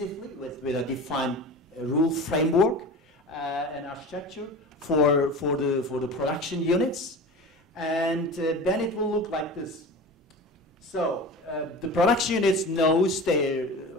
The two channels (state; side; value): normal; both; correlation 0.33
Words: with a defined rule framework and architecture for the production units, and then it will look like this. So the production units knows